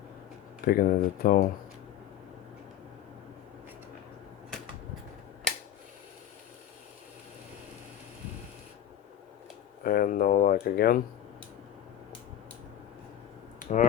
it at all. And no luck again.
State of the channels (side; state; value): right; quieter; 11.1 dB